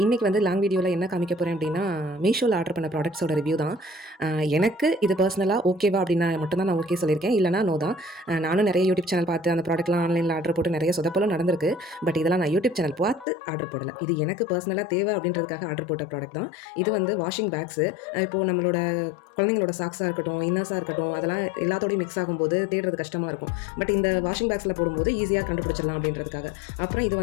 இன்றைக்கி வந்து லாங் வீடியோவில் என்ன காமிக்க போகிறேன் அப்படின்னா, மீஷோவில் ஆர்டர் பண்ண ப்ராடக்ட்ஸோட ரிவ்யூ தான். எனக்கு இது பர்சனலாக ஓகேவா அப்படின்னா மட்டும்தான் நான் ஓகே சொல்லியிருக்கேன், இல்லைனா நோ தான். நானும் நிறைய யூடியூப் சேனல் பார்த்து அந்த ப்ராடக்ட்லாம் ஆன்லைனில் ஆர்டர் போட்டு நிறைய சொதப்பலும் நடந்திருக்கு. பட் இதெல்லாம் நான் யூடியூப் சேனல் பார்த்து ஆர்டர் போடலை. இது எனக்கு பர்சனலாக தேவை அப்படின்றதுக்காக ஆர்டர் போட்ட ப்ராடக்ட் தான். இது வந்து வாஷிங் பேக்ஸு. இப்போது நம்மளோட குழந்தைங்களோட சாக்ஸாக இருக்கட்டும், இன்னர்ஸாக இருக்கட்டும், அதெல்லாம் எல்லாத்தோடையும் மிக்ஸ் ஆகும்போது தேடுறது கஷ்டமாக இருக்கும். பட் இந்த வாஷிங் பேக்ஸில் போடும்போது ஈஸியாக கண்டுபிடிச்சிடலாம் அப்படின்றதுக்காக. அப்புறம் இது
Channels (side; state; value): right; drops out; at 13.2 s